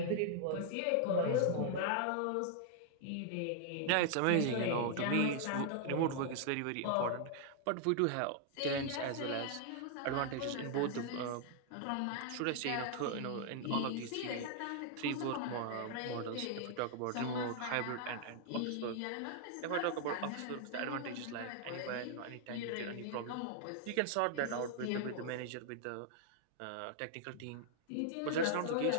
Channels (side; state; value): both; different; correlation -0.01